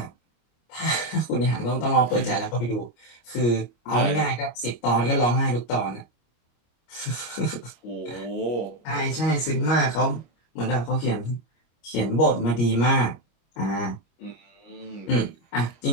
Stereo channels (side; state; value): right; late; 25 ms